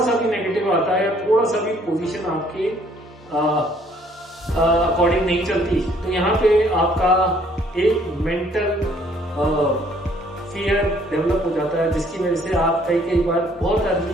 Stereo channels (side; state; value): both; normal; correlation 0.62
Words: भी नेगेटिव आता है या थोड़ा सा भी पोजीशन आपके अकॉर्डिंग नहीं चलती तो यहाँ पे आपका एक मेंटल फियर डेवलप हो जाता है, जिसकी वजह से आप कई बार बहुत